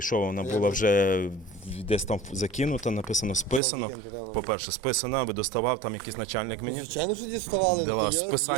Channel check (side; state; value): left; drops out; at 3.6 s